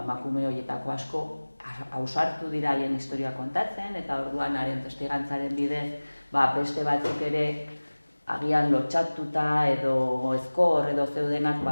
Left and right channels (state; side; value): inverted; both; correlation -1.00